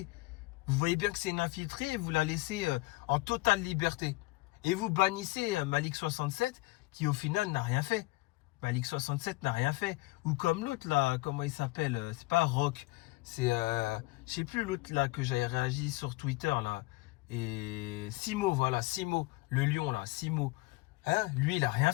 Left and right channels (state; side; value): quieter; right; 21.9 dB